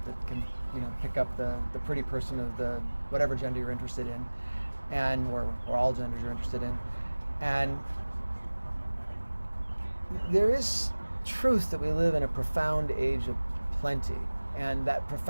that can, pick up the pretty person of the whatever gender you're interested in, or all genders you're interested in. And there is truth that we live in a profound age of plenty. And that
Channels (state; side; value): inverted; both; correlation -1.00